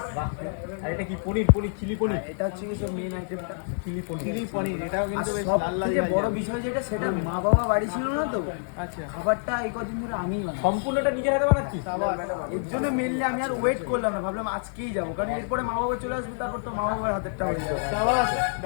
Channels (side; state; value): right; silent; 60 dB below the other